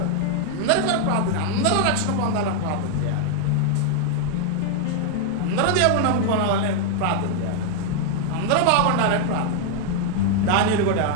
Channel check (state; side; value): different; both; correlation 0.00